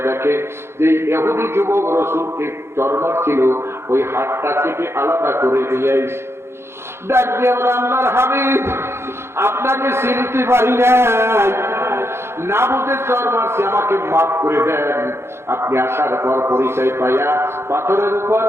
দেখে যে ইহুদি যুবক রাসূলকে চরমার ছিল, ওই হাতটা কেটে আলাদা করে নিয়ে আইছে। ডাক দিয়ে বলে, আল্লাহর হাবিব আপনাকে চিনতে পারি নাই, না বুঝে চর মারছি, আমাকে মাফ করে দেন। আপনি আসার পর পরিচয় পাইয়া পাথরের উপর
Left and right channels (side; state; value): left; late; 0.12 ms